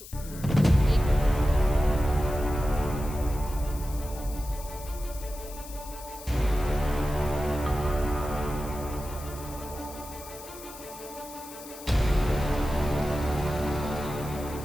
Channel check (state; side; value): noise; left; hiss, 15 dB below the sound